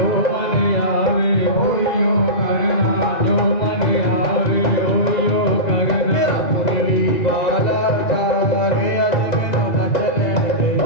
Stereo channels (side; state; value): right; late; 2.0 ms